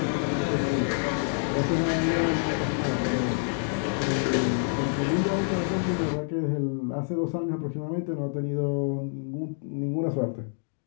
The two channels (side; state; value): right; silent; digital silence